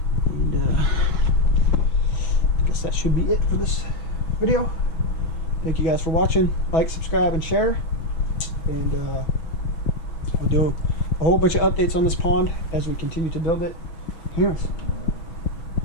And I guess that should be it for this video. Thank you guys for watching. Like, subscribe, and share. And we'll do a whole bunch of updates on this pond as we continue to build it. Anyways,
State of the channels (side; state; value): right; late; 6.2 ms